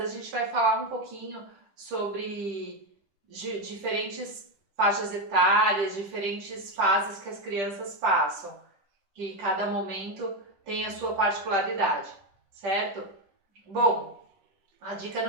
a gente vai falar um pouquinho sobre diferentes faixas etárias, diferentes fases que as crianças passam, que cada momento tem a sua particularidade, certo? Bom, a dica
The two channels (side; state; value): left; late; 10 ms